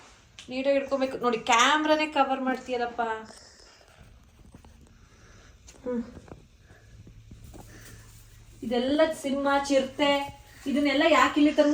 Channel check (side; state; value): both; identical; correlation 1.00